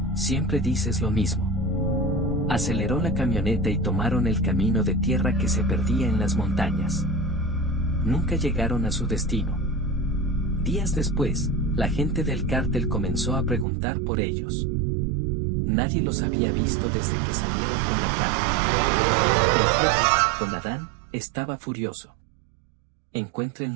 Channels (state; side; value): drops out; left; at 13.7 s